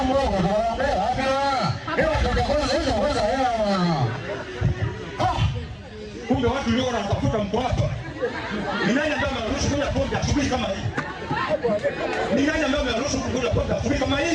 mdogo tunaambia hapa tutakosa hizo kwanza hela. Kumbe watu leo wanatafuta mko hapa. Ni nani ambaye anaruhusu kunywa pombe asubuhi kama hii? Ni nani ambaye anaruhusu kunywa pombe asubuhi kama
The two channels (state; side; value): identical; both; correlation 1.00